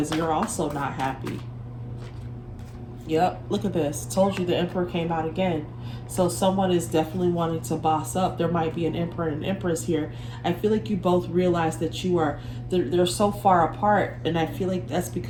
you're also not happy. Yep, look at this. Told you the emperor came out again. So someone is definitely wanting to boss up. There might be an emperor and an empress here. I feel like you both realize that they're so far apart, and I feel like that's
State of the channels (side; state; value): both; identical; correlation 1.00